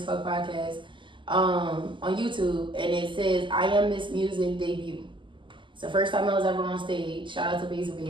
Fuck Podcast, on YouTube, and it says I Am Miss Music debut. It's the first time I was ever on stage. Shout out to Basil.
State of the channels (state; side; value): late; left; 0.24 ms